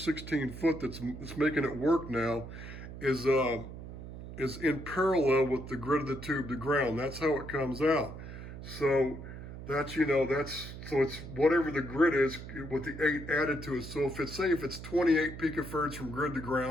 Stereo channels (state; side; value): noise; right; hum, 11 dB below the sound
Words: foot that's making it work now, is in parallel with the grid of the tube to ground. That's how it comes out. So that's, you know, so it's whatever the grid is with the 8 added to it. So if it's 28 picofarads from grid to